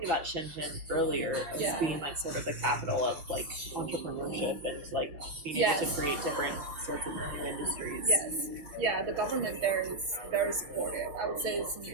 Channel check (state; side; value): late; left; 6.1 ms